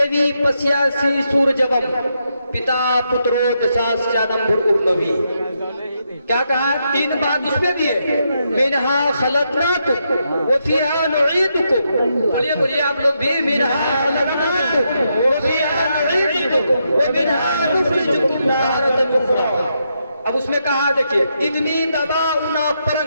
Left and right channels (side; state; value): both; inverted; correlation -0.81